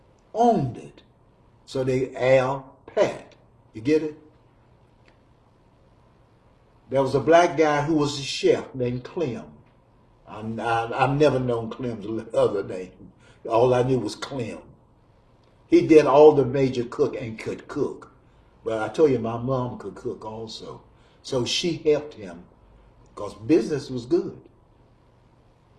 owned it. So they Al Pat. You get it? There was a black guy who was a chef named Clem. I've never known Clem's other name. All I knew was Clem. He did all the major cook and could cook. But I told you, my mom could cook also. So she helped him because business was good.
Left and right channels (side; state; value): both; identical; correlation 1.00